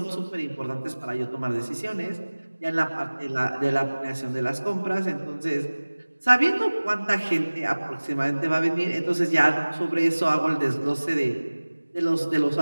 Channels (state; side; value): inverted; both; correlation -1.00